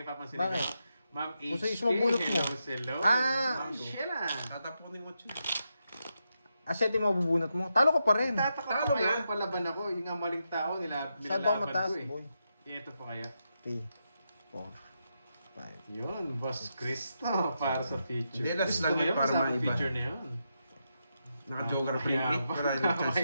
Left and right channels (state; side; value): inverted; both; correlation -0.85